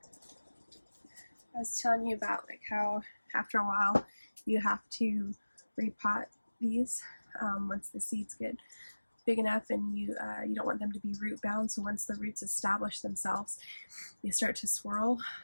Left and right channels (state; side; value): inverted; both; correlation -1.00